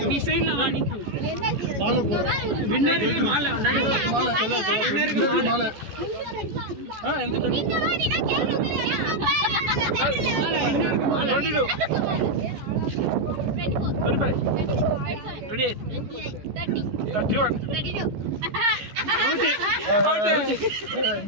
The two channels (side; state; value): left; late; 14 ms